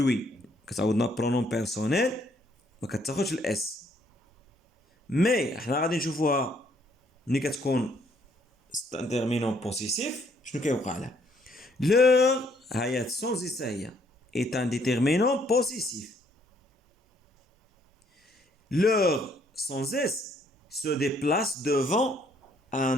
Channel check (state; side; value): normal; both; correlation 0.67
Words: كتعوض لنا pronom personnel ما كتاخدش الاس. مي احنا غادي نشوفوها ملي كتكون انترمينون بوسيسيف شنو كيوقع لها. leur هي sans اس هي est un déterminant possessif. leur sans S se déplace devant un